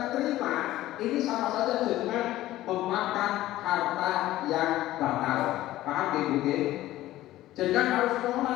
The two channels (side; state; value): right; quieter; 15.3 dB